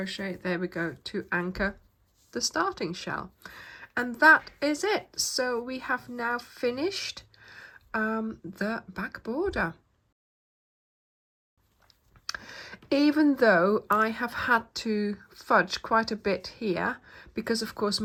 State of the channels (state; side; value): identical; both; correlation 1.00